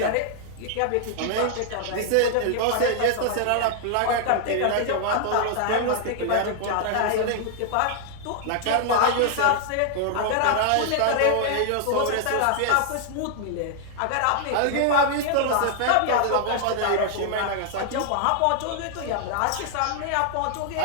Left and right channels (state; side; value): different; both; correlation -0.01